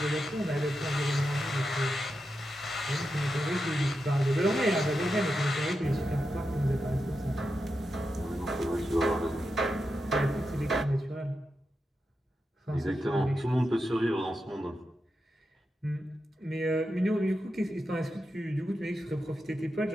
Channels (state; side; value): normal; both; correlation 0.88